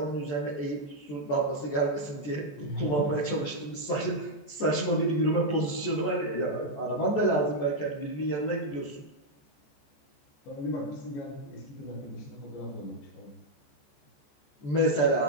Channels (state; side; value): late; right; 14 ms